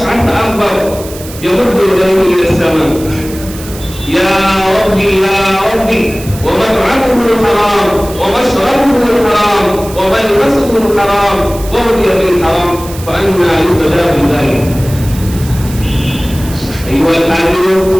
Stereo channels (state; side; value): noise; right; hiss, 15 dB below the sound